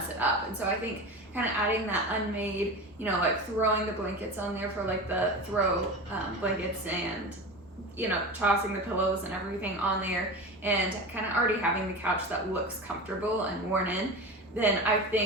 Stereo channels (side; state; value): both; normal; correlation 0.28